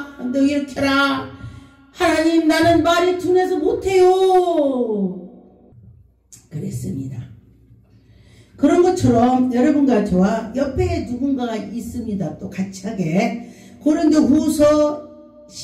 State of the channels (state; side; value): identical; both; correlation 1.00